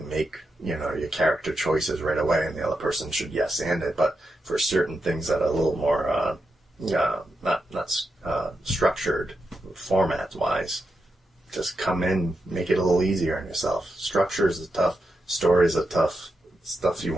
make, you know, your character choices right away, and the other person should yes and it. But for certain things that are a little more not structured format wise, just come in, make it a little easier on yourself. Structures is tough. Stories are tough. Stuff you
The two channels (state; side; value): normal; both; correlation 0.86